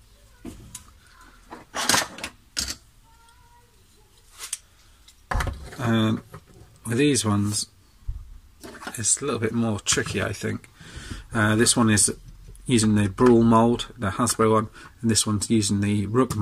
With these ones, it's a little bit more tricky, I think. This one is using the Brawl mould, the Hasbro one, and this one's using the Rook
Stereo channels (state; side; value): identical; both; correlation 1.00